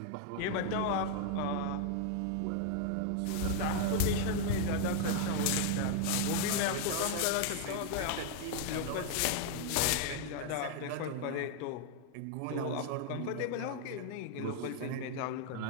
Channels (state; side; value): different; both; correlation 0.00